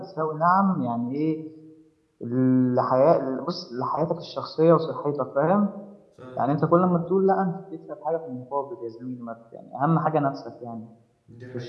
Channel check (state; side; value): identical; both; correlation 1.00